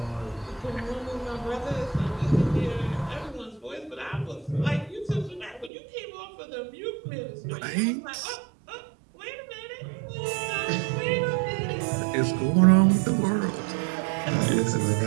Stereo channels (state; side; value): drops out; left; at 5.7 s